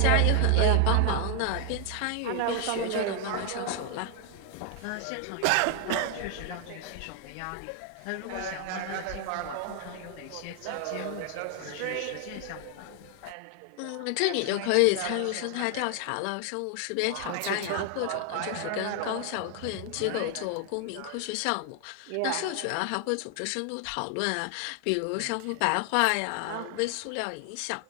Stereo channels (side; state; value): both; different; correlation 0.00